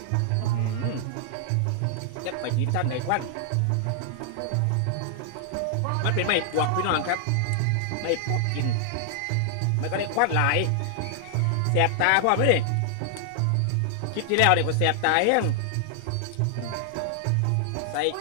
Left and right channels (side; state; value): both; different; correlation 0.00